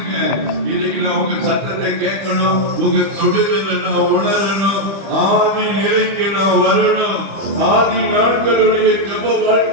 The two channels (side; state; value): left; late; 25 ms